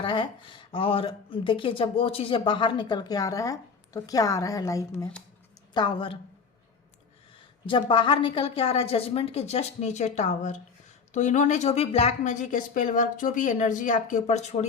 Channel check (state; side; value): quieter; right; 5.4 dB